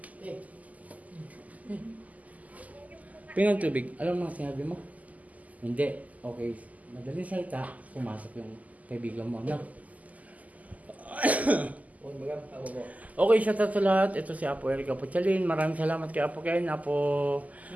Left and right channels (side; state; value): left; late; 0.076 ms